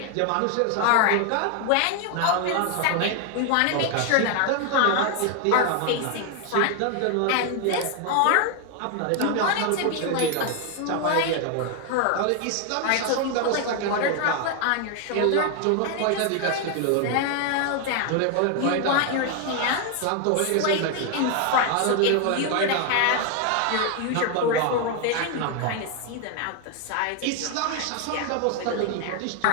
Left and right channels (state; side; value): different; both; correlation 0.01